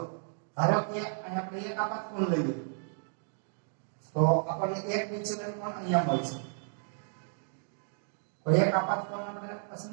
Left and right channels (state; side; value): silent; left; digital silence